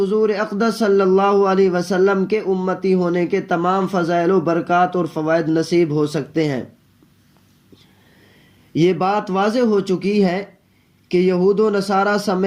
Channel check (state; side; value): identical; both; correlation 1.00